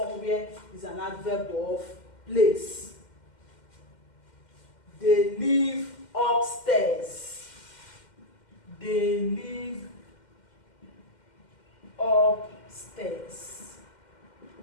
is an adverb of place. They live upstairs. They live upstairs.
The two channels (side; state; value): right; late; 2.1 ms